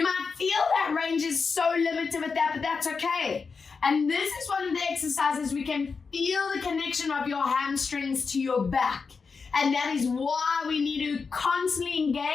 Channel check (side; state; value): right; quieter; 5.0 dB